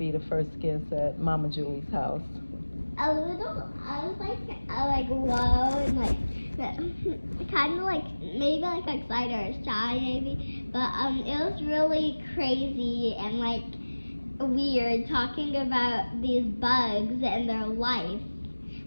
the first guest at Mama Julie's house? A little, I was like whoa, and like kind of like maybe like excited or shy maybe, but it was really crazy and like weird talking about these bugs and their life.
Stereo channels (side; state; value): both; inverted; correlation -1.00